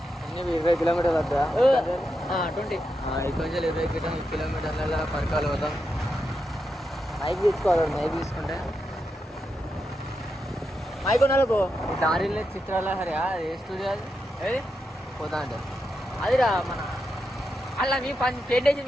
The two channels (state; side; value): normal; both; correlation 0.86